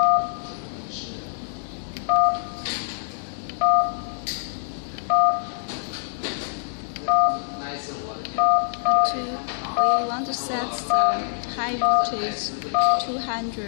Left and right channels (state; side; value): silent; right; digital silence